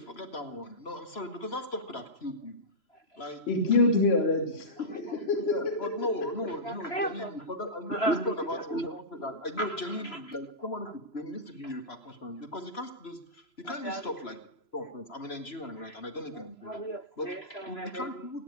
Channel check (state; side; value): late; right; 3.0 ms